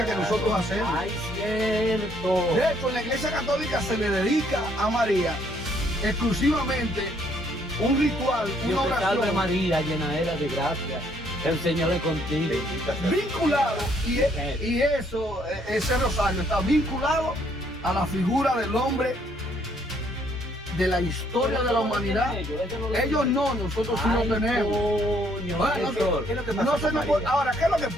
que nosotros hacemos. Ay, cierto. De hecho, en la Iglesia Católica se le dedica a María exclusivamente un ritual, una Dios te salve oración María, llenadera de gracia. El Señor es contigo. vinculado, y eso, ese rosario está vinculado a la figura del hombre de la historia de la humanidad. Ellos no, nosotros sí lo tenemos. Coño, Bueno, ¿Qué es lo que pasa no con se nos María? puede- Ahora, ¿qué es lo que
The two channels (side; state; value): both; normal; correlation 0.67